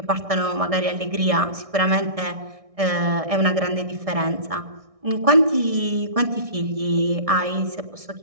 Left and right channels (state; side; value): late; left; 1.6 ms